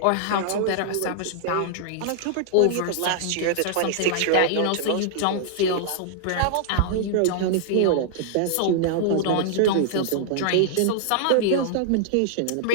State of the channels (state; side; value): different; both; correlation -0.01